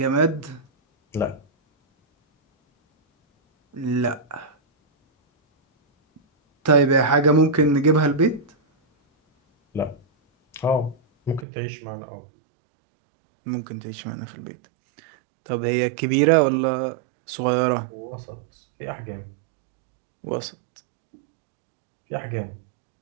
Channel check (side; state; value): left; drops out; at 11.5 s